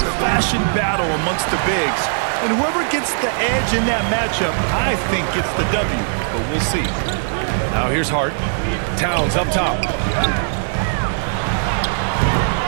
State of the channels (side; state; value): left; silent; 66 dB below the other